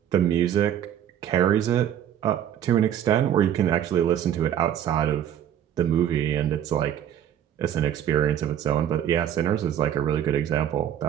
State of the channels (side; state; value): left; quieter; 10.2 dB